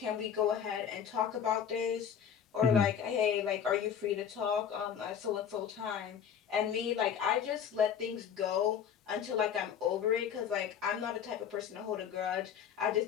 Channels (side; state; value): right; quieter; 8.2 dB